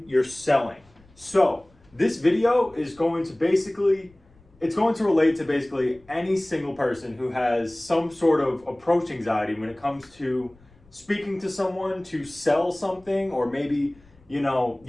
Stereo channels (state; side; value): noise; left; rumble, 29 dB below the sound